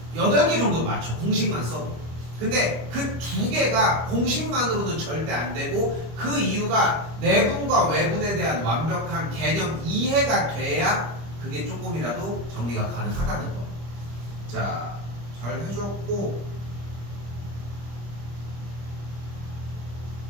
8개 정도 맞춰. 공식만 써도. 근데 그 2개가 공식만으로는 절대 안 되고, 그 이유가 내분과 외분에 대한 완벽한 개념 이해가 돼야 그게 조금이라도 정리가 가능하다는 거. 자, 잘 해줬고,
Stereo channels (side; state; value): left; late; 25 ms